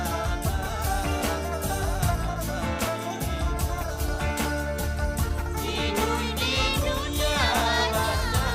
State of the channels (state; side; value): identical; both; correlation 1.00